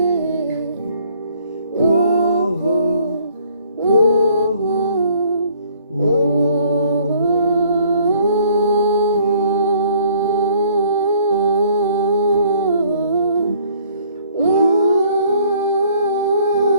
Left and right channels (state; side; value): inverted; both; correlation -0.60